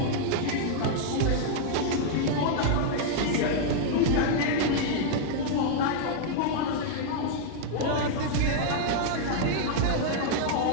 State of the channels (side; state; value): both; different; correlation -0.01